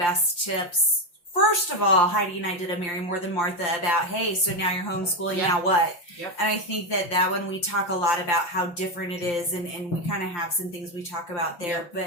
tips, first of all, Heidi and I did a Mary More Than Martha about, hey, so now you're homeschooling, now what? Yep. And I think that one we talk a lot about how different it is, and we kind of have some things we talk about there.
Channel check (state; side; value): late; right; 5.8 ms